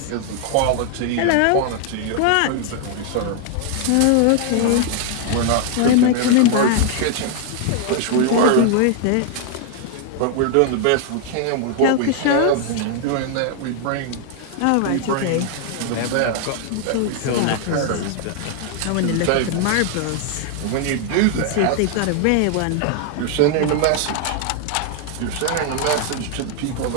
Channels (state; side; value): different; both; correlation 0.00